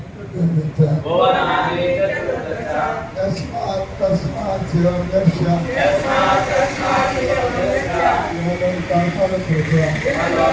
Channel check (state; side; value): identical; both; correlation 1.00